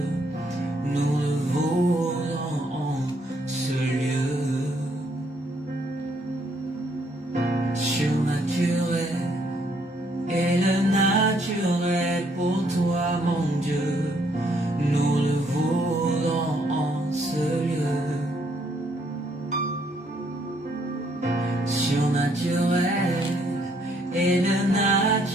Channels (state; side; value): normal; both; correlation 0.69